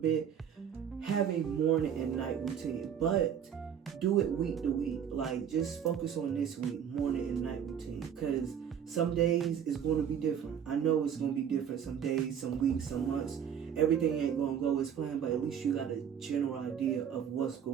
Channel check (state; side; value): quieter; left; 8.4 dB